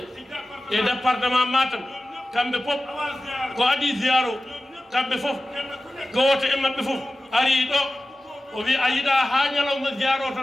e département Matam kamɓe fof ko adi ziyaro kamɓe fof gooto e maɓɓe fof ari ɗo o wi a yiɗa ha ñalawma ziyaro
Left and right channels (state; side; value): normal; both; correlation 0.95